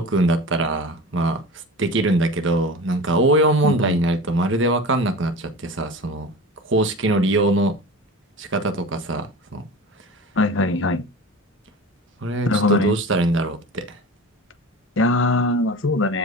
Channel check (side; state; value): both; normal; correlation 0.33